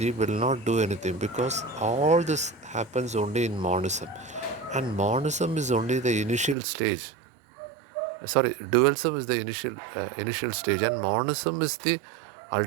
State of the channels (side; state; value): left; drops out; at 6.6 s